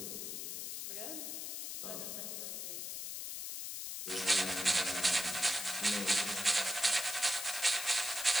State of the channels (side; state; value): left; noise; hiss, 5 dB below the sound